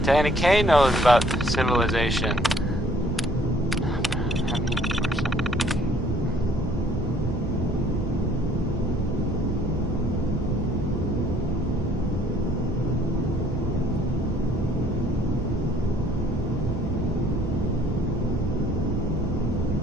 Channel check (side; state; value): both; normal; correlation 0.60